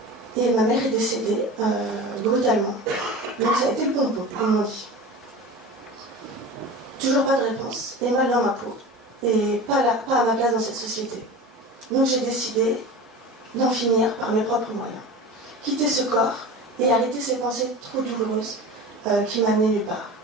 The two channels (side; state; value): both; normal; correlation 0.33